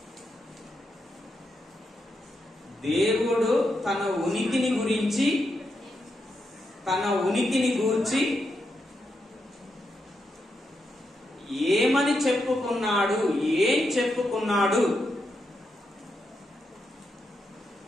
దేవుడు తన ఉనికిని గురించి, తన ఉనికిని గూర్చి ఏమని చెప్పుకున్నాడు, ఏం చెప్పుకున్నాడు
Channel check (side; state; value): both; normal; correlation 0.84